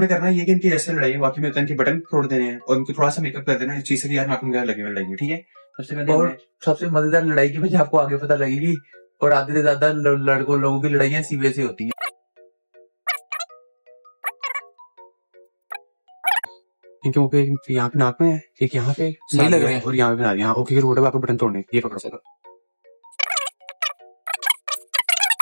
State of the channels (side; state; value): both; inverted; correlation -1.00